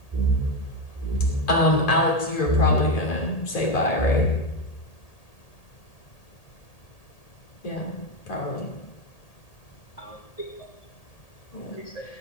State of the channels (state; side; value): late; right; 1.8 ms